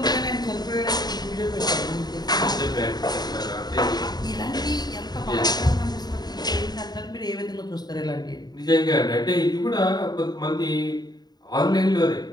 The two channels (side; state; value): right; late; 0.20 ms